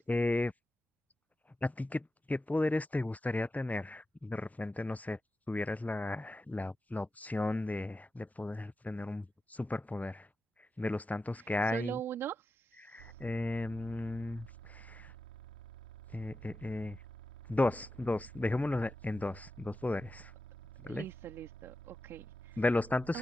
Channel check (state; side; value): normal; both; correlation 0.92